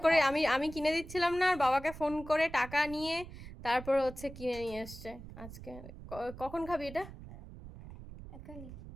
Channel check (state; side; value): noise; right; rumble, 14 dB below the sound